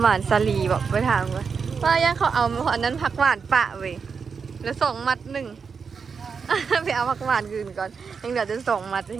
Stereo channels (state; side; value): quieter; left; 5.7 dB